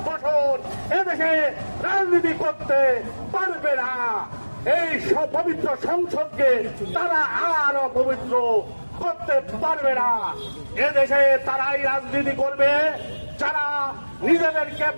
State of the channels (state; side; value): inverted; both; correlation -1.00